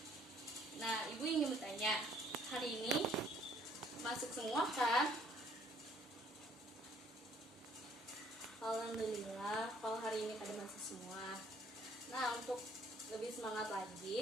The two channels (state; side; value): normal; both; correlation 0.62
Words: Nah, ibu ingin bertanya, hari ini masuk semua kan? Alhamdulillah, kalau hari ini pada masuk semua. Nah, untuk lebih semangat